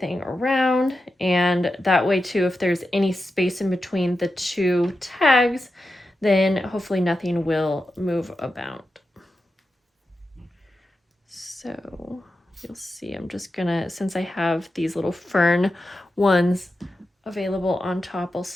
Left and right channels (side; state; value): both; normal; correlation 0.90